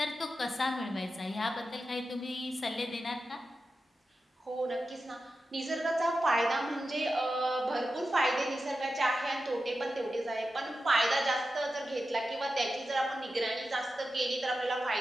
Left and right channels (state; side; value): normal; both; correlation 0.91